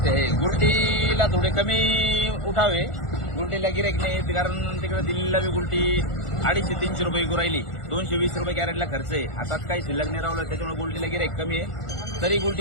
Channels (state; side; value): late; right; 1.4 ms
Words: आहे. गुलटीला थोडे कमी उठावे. गुलटीला गिराईक नाही, कारण तिकडे दिल्लीला बी गुलटी 250-300 रुपये विकू राहिली. 220 रुपये कॅरेटला खर्च आहे. हातात काही शिल्लक नाही राहिलं, त्याच्यामुळे गुलटीला गिराईक कमी आहे. तरी